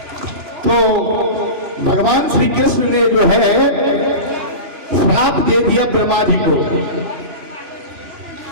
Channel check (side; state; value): left; late; 2.9 ms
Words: तो भगवान श्री कृष्ण ने जो है श्राप दे दिया ब्रह्मा जी को